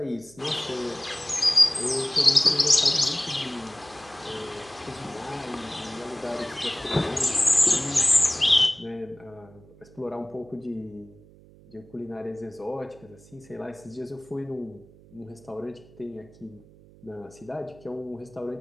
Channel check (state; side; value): noise; right; hum, 24 dB below the sound